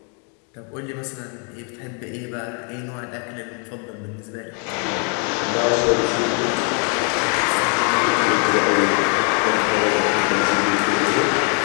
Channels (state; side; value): quieter; right; 39.4 dB